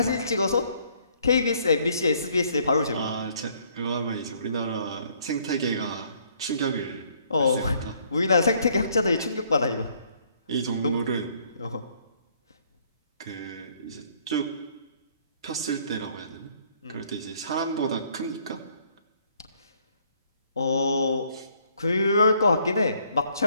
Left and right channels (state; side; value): inverted; both; correlation -0.65